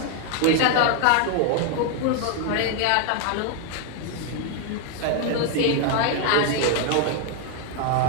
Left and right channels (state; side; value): different; both; correlation 0.00